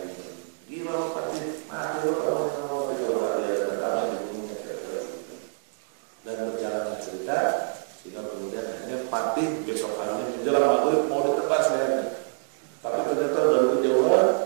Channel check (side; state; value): left; silent; digital silence